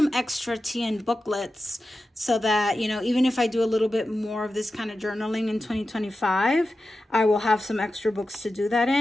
extra TN booklets so that, you know, even if I do a little bit more of this kind of journaling in 2025, I will have some extra books to do that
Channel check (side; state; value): both; normal; correlation 0.92